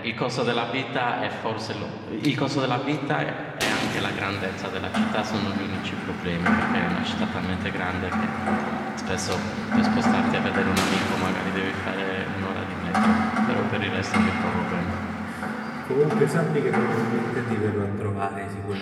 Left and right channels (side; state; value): both; identical; correlation 1.00